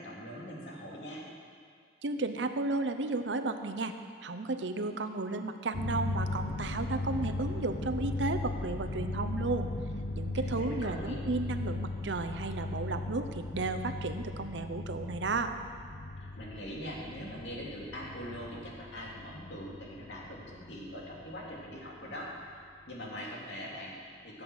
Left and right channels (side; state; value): both; normal; correlation 0.35